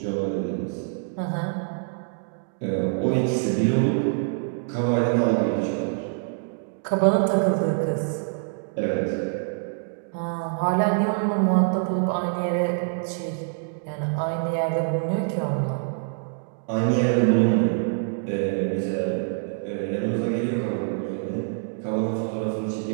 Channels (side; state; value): left; silent; digital silence